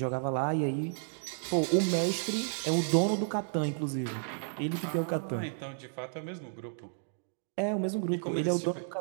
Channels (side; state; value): left; silent; digital silence